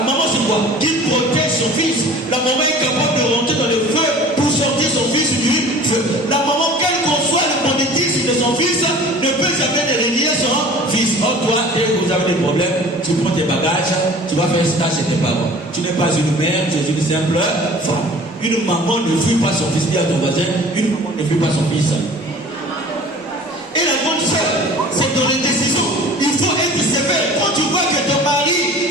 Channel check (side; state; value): both; normal; correlation 0.45